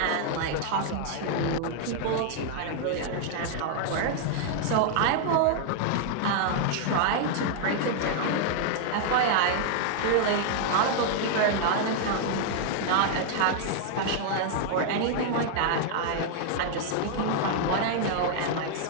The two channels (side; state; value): both; different; correlation 0.00